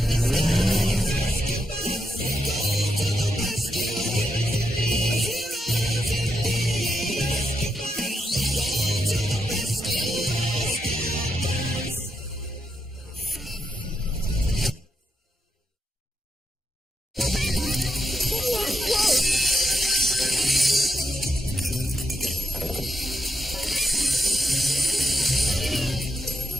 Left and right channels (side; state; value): both; normal; correlation 0.83